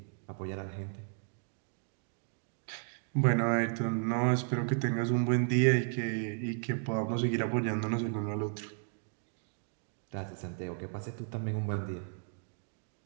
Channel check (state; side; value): silent; left; 55 dB below the other